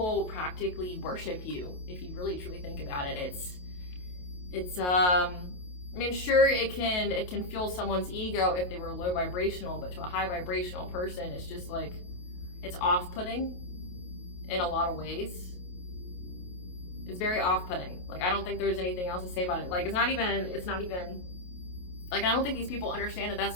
practically worship you. If you really truly think about it, it's I mean, sure, it can fuel someone's ego if they were low vibrational, but to a high vibrational person, it's just like, it's off-putting in a lot of ways. It's very off-putting. Like, I don't think there's anything else to say about it. Like, it's not even like, I don't think these people understand that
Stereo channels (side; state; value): right; late; 28 ms